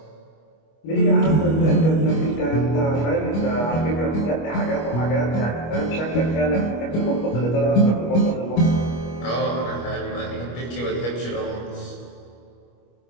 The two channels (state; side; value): late; right; 25 ms